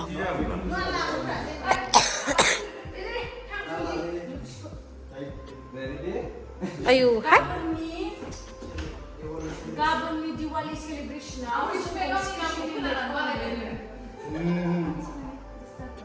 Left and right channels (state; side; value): identical; both; correlation 1.00